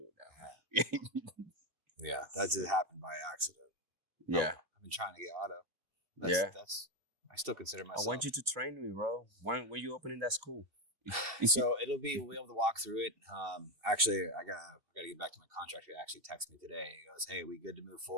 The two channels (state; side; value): late; left; 2.6 ms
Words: Yeah, that just happened by accident. Yeah. I've been trying to get auto. That's. I still consider myself. I want you to train me, bro. When you opening that school? So we'll be able to walk through it. Actually, I gotta get back to my contractor. He actually texted me today. He goes, "Hey, we good to move